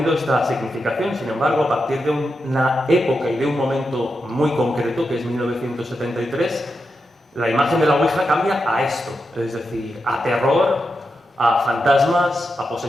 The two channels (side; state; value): both; normal; correlation 0.87